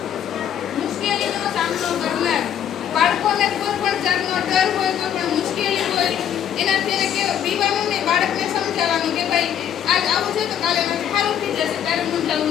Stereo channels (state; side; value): quieter; right; 9.6 dB